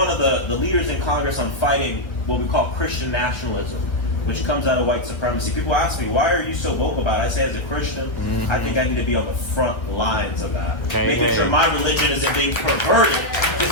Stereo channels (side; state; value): right; late; 1.5 ms